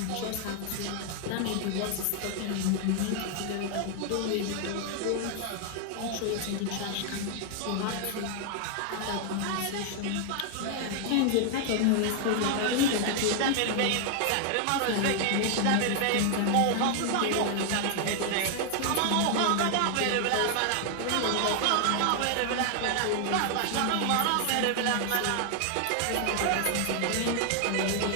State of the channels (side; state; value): both; different; correlation 0.00